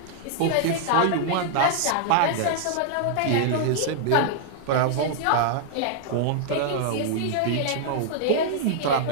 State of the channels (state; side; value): different; both; correlation -0.01